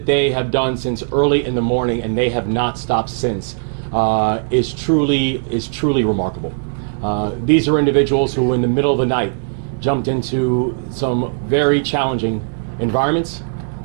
they have done since early in the morning, and they have not stopped since, is truly remarkable. These are individuals who in the middle of the night jumped into some very challenging environments,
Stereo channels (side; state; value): left; silent; digital silence